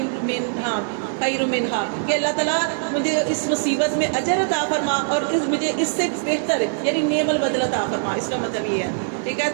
منہا، کہ اللہ تعالیٰ مجھے اس مصیبت میں اجر عطا فرما، اور مجھے اس سے بہتر یعنی نعم البدل عطا فرما، اس کا مطلب یہ ہے، ٹھیک ہے۔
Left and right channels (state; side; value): silent; left; 64 dB below the other